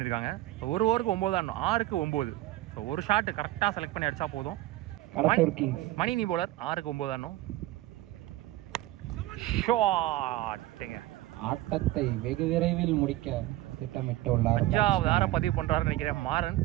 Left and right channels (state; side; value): quieter; left; 16.5 dB